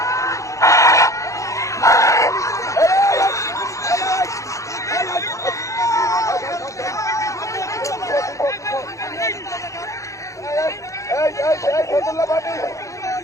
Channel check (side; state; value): right; late; 0.15 ms